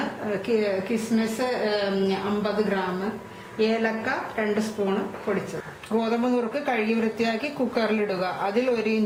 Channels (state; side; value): identical; both; correlation 1.00